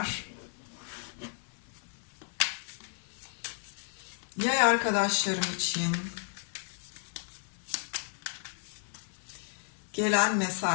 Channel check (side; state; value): right; silent; 56 dB below the other